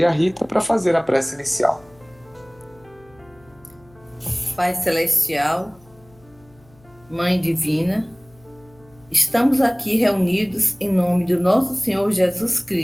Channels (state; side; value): noise; left; hum, 28 dB below the sound